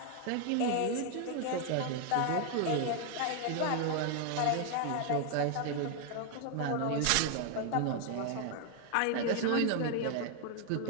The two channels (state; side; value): different; both; correlation 0.00